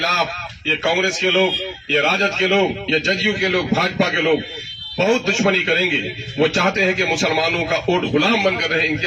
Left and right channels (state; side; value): identical; both; correlation 1.00